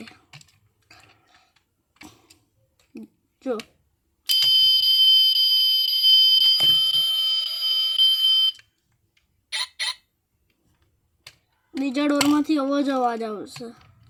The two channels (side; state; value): both; identical; correlation 1.00